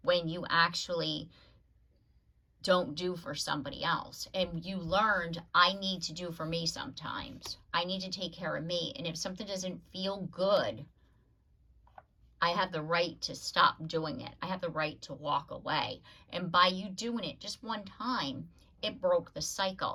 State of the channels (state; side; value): identical; both; correlation 1.00